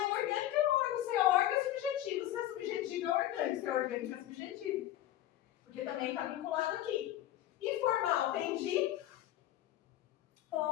orgânico é órgão. Se é órgão é subjetivo. Se é subjetivo é orgânico. Se é orgânico é subjetivo. Porque também está vinculado aqui. E formal vem de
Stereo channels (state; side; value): quieter; right; 13.4 dB